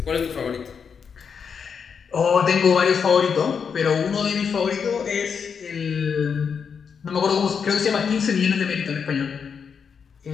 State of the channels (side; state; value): right; quieter; 6.5 dB